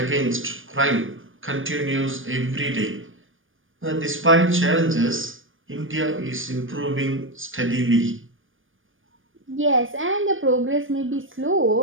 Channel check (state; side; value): late; left; 0.58 ms